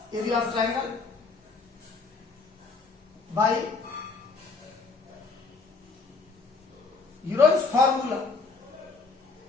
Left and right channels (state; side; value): quieter; right; 4.2 dB